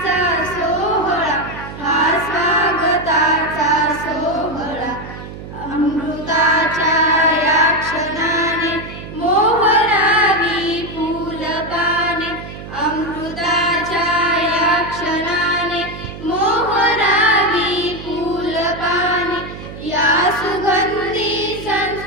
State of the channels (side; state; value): right; noise; hum, 12 dB below the sound